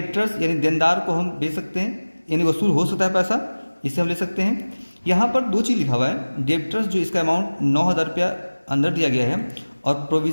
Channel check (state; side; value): inverted; both; correlation -1.00